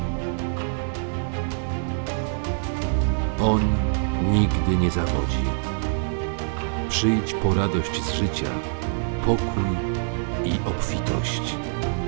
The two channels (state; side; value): silent; left; 62 dB below the other